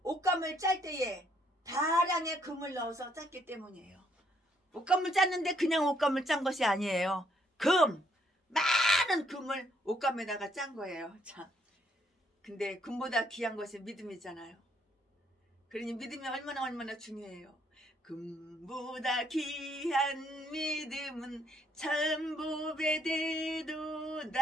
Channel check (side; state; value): both; normal; correlation 0.70